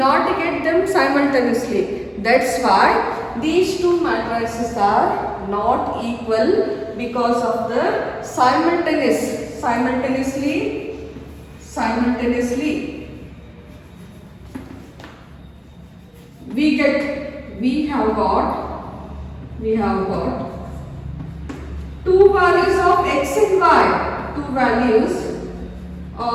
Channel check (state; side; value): identical; both; correlation 1.00